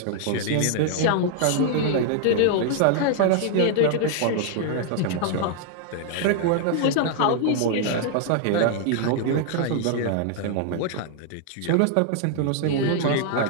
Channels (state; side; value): different; both; correlation 0.00